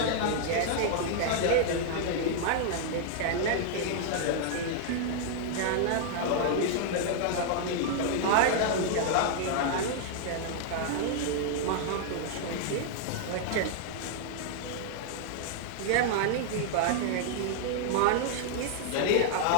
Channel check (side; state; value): both; different; correlation -0.01